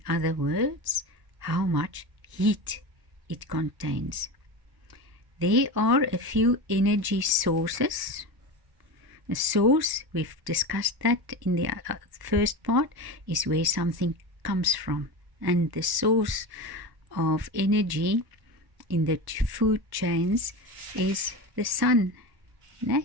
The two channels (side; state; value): left; late; 1.1 ms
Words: other words, how much heat it contains. There are a few energy sources. A source, we've discussed that in the first part, is where something comes from. And the source of energy in the food chains is the sun.